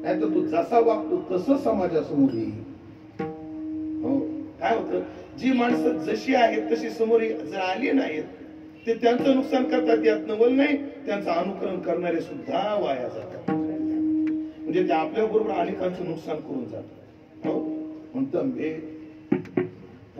नाहीतर तू जसा वागतो तसं समाजासमोर येईल. हो, काय होतं, जी माणसं जशी आहेत तशी समोर जर आली नाहीत, ते त्यांचं नुकसान करतात. यात नवल नाही, त्यांचं अनुकरण करणारे सुद्धा वाया जातात. म्हणजे ते आपल्या बरोबर अनेकांचं नुकसान करून जातात. हो, म्हणतं बे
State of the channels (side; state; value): both; identical; correlation 1.00